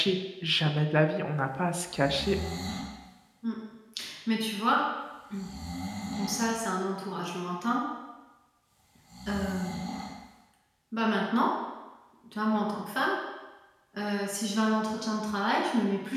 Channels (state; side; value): identical; both; correlation 1.00